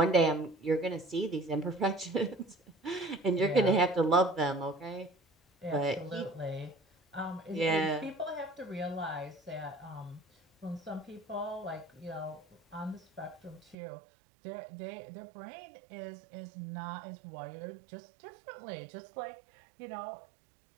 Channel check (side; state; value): left; drops out; at 13.8 s